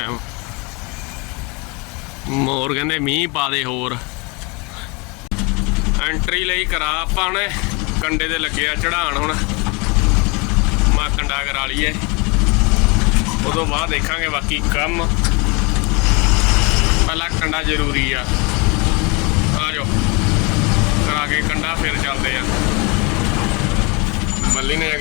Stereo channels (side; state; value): right; quieter; 29.3 dB